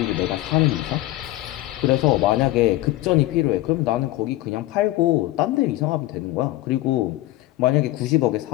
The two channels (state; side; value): quieter; right; 16.7 dB